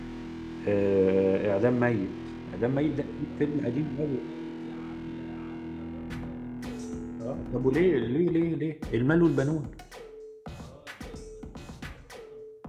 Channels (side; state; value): both; identical; correlation 1.00